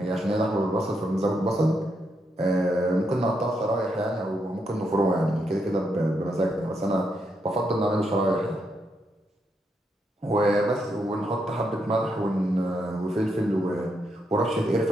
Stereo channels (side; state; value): both; normal; correlation 0.80